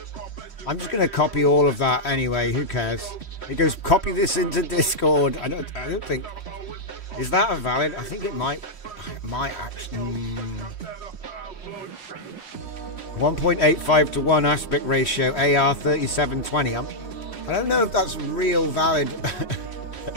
I'm just going to copy all of that anyway. Who cares? It goes, copy this into Discord. I don't think... Is that a valid? I think it might actually... 1.85 to 1 aspect ratio, AR 3720. I don't know if that's real valid,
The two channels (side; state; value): right; late; 3.1 ms